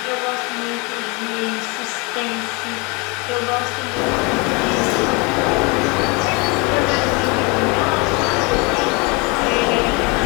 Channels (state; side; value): quieter; right; 29.0 dB